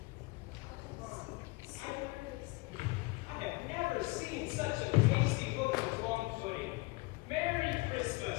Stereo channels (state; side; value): quieter; right; 24.1 dB